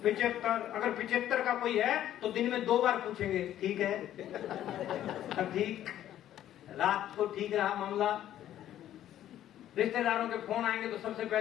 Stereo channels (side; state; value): right; quieter; 12.0 dB